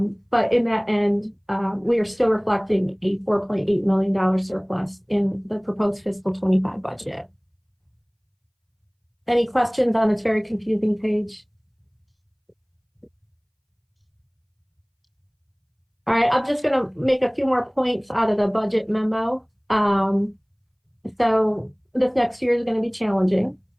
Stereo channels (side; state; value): both; identical; correlation 1.00